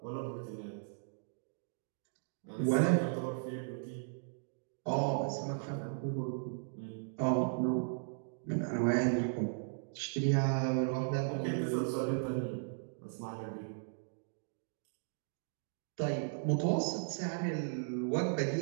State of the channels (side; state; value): left; silent; digital silence